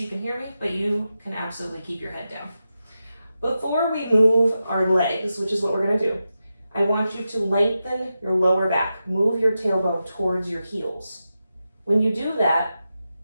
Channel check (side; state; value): both; inverted; correlation -0.90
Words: you can hear me, but you can absolutely keep your head down. Before we move our legs, which is what we're gonna do, I want you to lengthen your lower back. Move your tailbone towards your heels. When you do that,